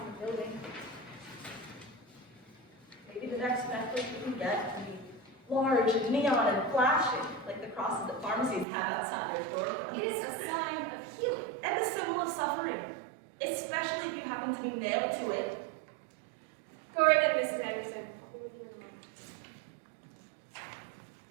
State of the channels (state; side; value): drops out; left; at 8.7 s